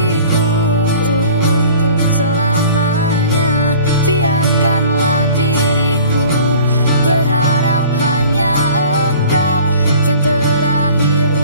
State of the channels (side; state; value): both; inverted; correlation -0.47